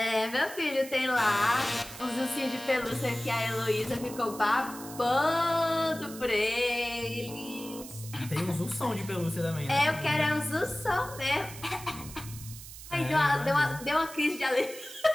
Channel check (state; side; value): noise; right; hiss, 14 dB below the sound